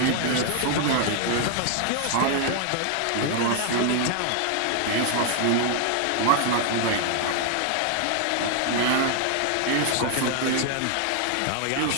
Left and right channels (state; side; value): different; both; correlation 0.00